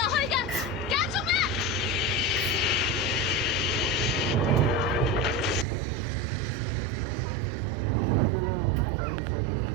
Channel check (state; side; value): drops out; left; at 5.7 s